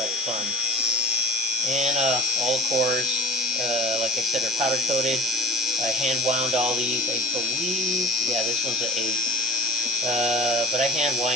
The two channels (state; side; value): normal; both; correlation 0.39